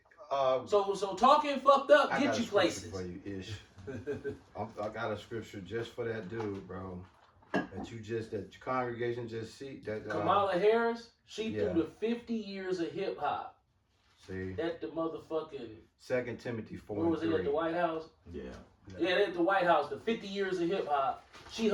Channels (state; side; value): identical; both; correlation 1.00